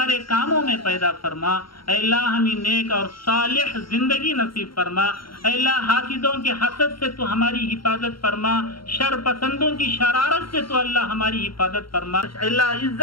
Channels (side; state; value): right; late; 0.73 ms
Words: کاموں میں پیدا فرما. اے اللہ ہمیں نیک اور صالح زندگی نصیب فرما. اے اللہ حاسدوں کے حسد سے تو ہماری حفاظت فرما. شر پسندوں کی شرارت سے تو اللہ ہماری حفاظت فرما. اے اللہ